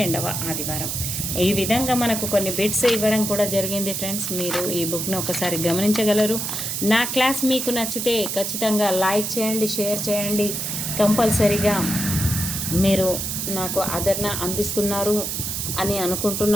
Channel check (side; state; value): right; noise; hiss, 3 dB below the sound